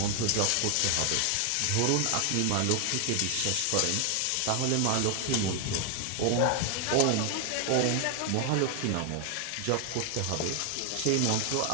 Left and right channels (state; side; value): different; both; correlation 0.00